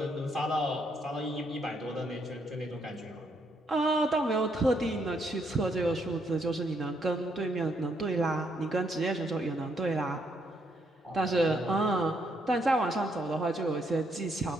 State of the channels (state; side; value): normal; both; correlation 0.74